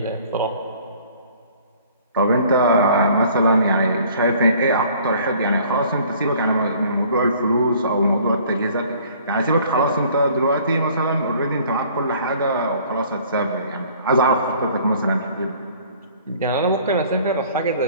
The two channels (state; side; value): inverted; both; correlation -0.54